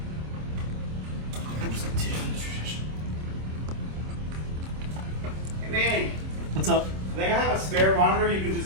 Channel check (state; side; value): late; left; 26 ms